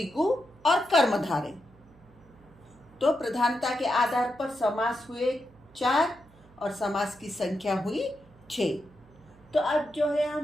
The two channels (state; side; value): noise; right; hum, 26 dB below the sound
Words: और कर्मधारय। तो प्रधानता के आधार पर समास हुए 4 और समास की संख्या हुई 6। तो अब जो है